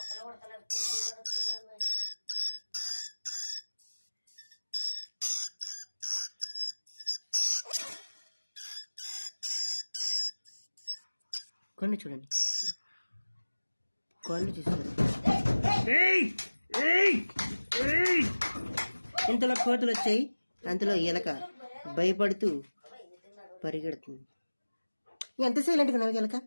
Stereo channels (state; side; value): inverted; both; correlation -1.00